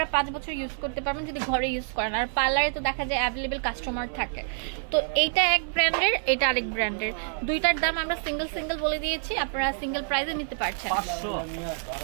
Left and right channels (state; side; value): silent; left; digital silence